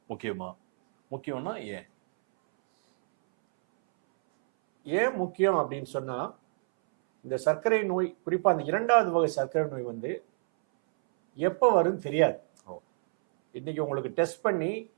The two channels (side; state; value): left; silent; 59 dB below the other